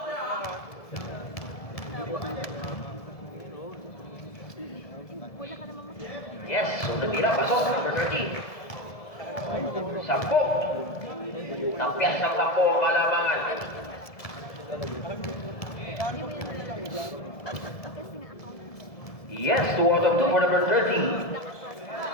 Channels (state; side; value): late; right; 1.7 ms